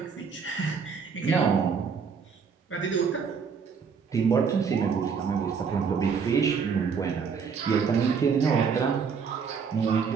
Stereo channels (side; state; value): left; quieter; 6.1 dB